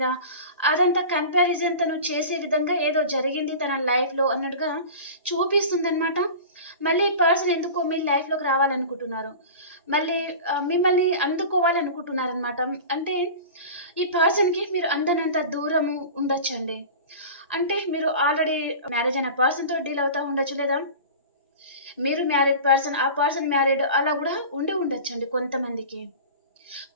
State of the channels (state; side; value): inverted; both; correlation -0.34